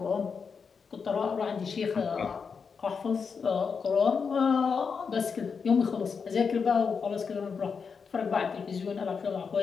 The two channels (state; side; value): quieter; right; 5.7 dB